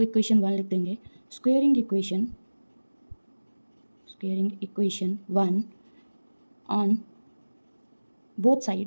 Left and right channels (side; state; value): both; inverted; correlation -1.00